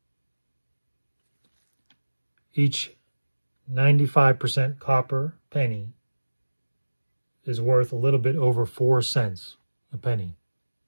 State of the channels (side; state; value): both; inverted; correlation -1.00